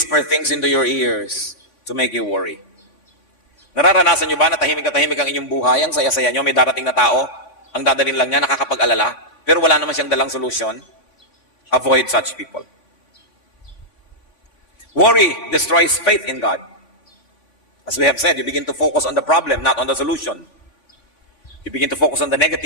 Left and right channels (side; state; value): right; late; 3.6 ms